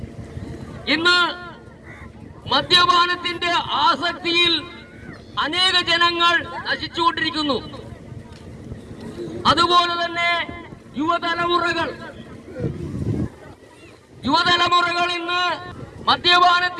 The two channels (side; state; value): both; identical; correlation 1.00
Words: ഇന്ന് മദ്യപാനത്തിന്റെ ആസക്തിയിൽ അനേക ജനങ്ങൾ നശിച്ചുകൊണ്ടിരിക്കുന്നു. അതുപോലെ തന്നെ യുവതലമുറകൾ ഇന്ന്